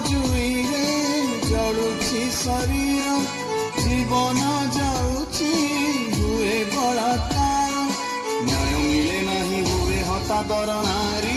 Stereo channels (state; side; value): identical; both; correlation 1.00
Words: ଜୁଇରେ ଜଳୁଛି ଶରୀର ଜୀବନ ଯାଉଛି ହୁଏ ବଳାକାର ନ୍ୟାୟ ମିଳେ ନାହିଁ ହୁଏ ହତାଦର